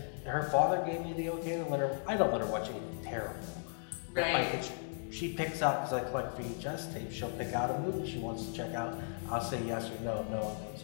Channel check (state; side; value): silent; right; digital silence